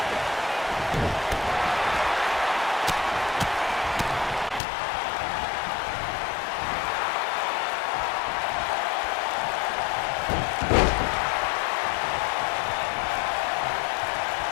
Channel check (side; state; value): right; drops out; at 4.6 s